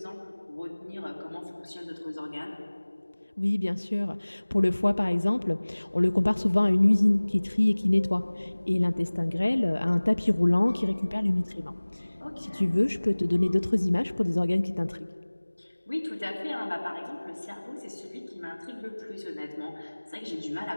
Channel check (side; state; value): both; inverted; correlation -1.00